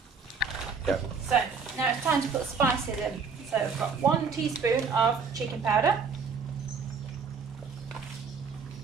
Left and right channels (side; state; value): left; quieter; 5.4 dB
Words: Yeah. So now it's time to put the spices in. So I've got 1 teaspoon of chicken powder.